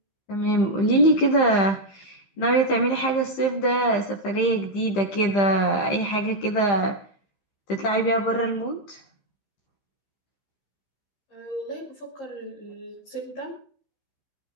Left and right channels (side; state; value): right; late; 15 ms